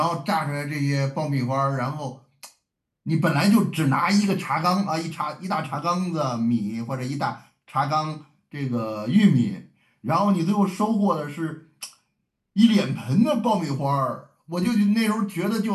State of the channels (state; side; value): identical; both; correlation 1.00